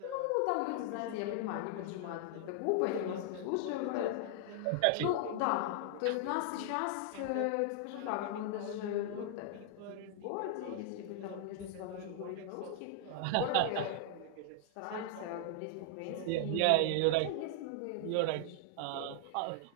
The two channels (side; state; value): both; different; correlation 0.00